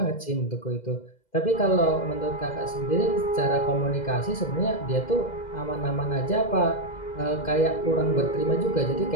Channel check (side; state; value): right; late; 2.1 ms